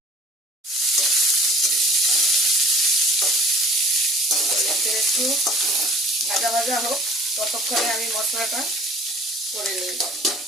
একটু ভাজা ভাজা হোক, ততক্ষণে আমি মশলাটা করে নিই।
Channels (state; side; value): normal; both; correlation 0.48